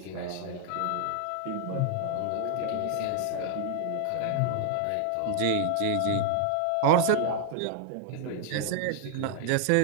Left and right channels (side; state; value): both; different; correlation 0.00